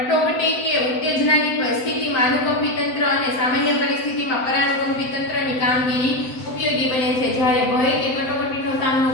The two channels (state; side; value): late; right; 7.8 ms